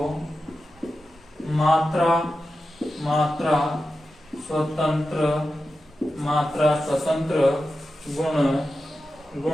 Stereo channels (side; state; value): both; normal; correlation 0.92